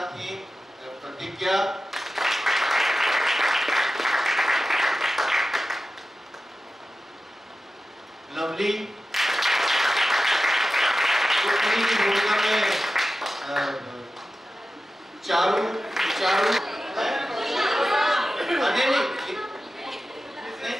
थी प्रतिज्ञा, लवली, उन्हीं की भूमिका में चारू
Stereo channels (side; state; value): both; normal; correlation 0.93